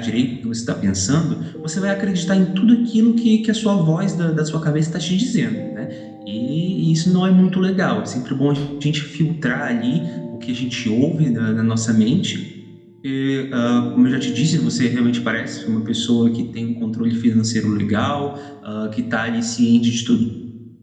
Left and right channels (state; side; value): identical; both; correlation 1.00